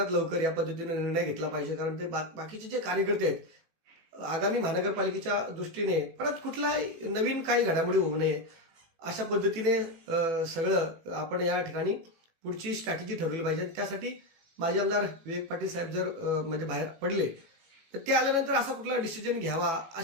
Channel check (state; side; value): late; left; 18 ms